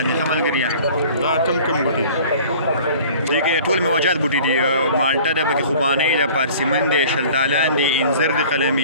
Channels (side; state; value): both; inverted; correlation -0.47